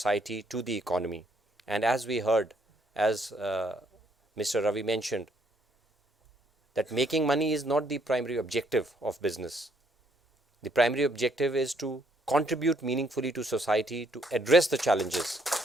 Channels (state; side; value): normal; both; correlation 0.69